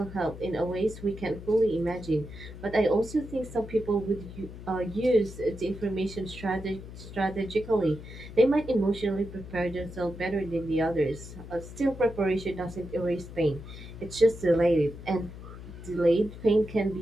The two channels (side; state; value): left; noise; hum, 13 dB below the sound